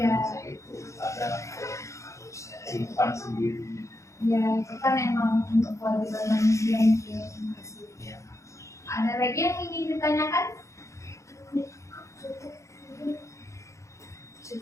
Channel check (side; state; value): right; late; 0.15 ms